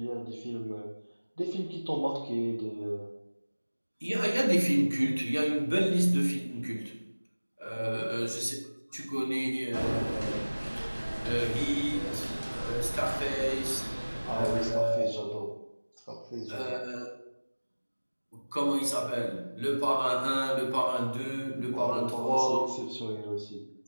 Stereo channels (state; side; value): inverted; both; correlation -1.00